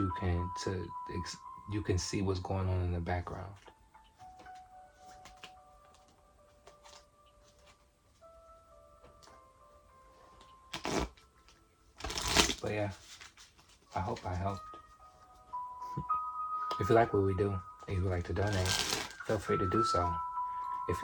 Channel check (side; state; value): both; identical; correlation 1.00